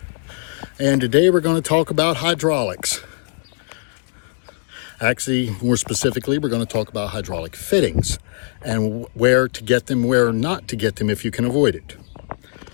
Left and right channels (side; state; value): right; silent; digital silence